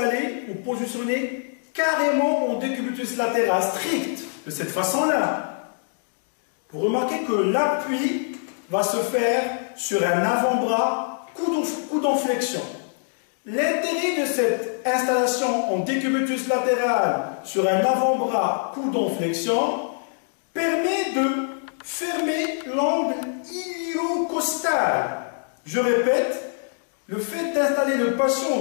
ou positionné carrément en décubitus latéral strict, de cette façon-là. Vous remarquez que l'appui va se faire sur un avant-bras, coude en flexion. L'intérêt de cette installation en décubitus latéral sur un avant-bras, coude en flexion, permet de fermer l'angle iliocostal. Je répète, le fait d'installer le patient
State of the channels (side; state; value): right; silent; digital silence